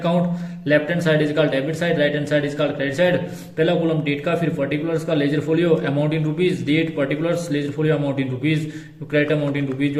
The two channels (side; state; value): both; identical; correlation 1.00